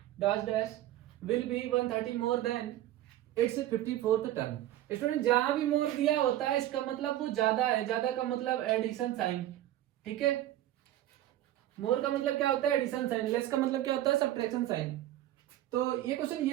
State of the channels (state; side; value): quieter; left; 13.8 dB